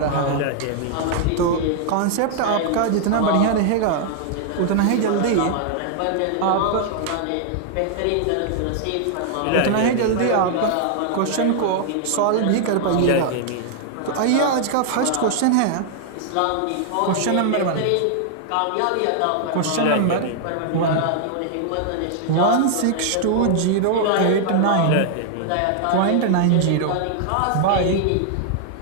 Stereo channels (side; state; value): both; different; correlation 0.00